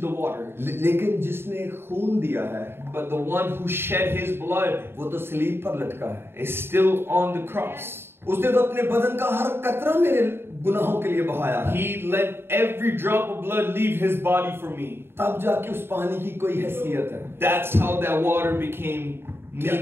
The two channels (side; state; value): left; late; 0.11 ms